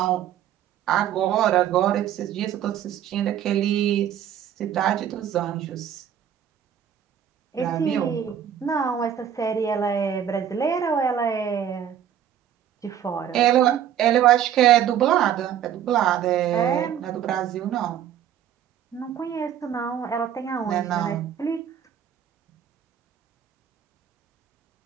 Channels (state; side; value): quieter; left; 9.7 dB